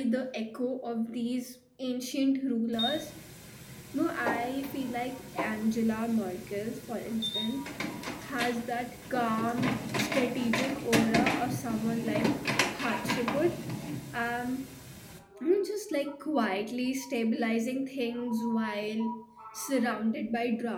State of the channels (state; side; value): identical; both; correlation 1.00